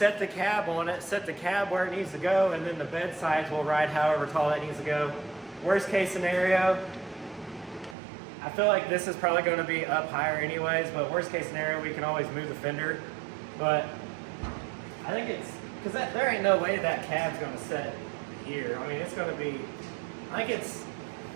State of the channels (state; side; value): drops out; left; at 8.0 s